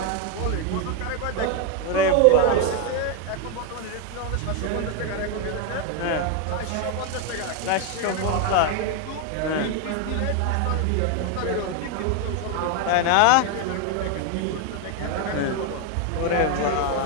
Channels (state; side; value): different; both; correlation 0.01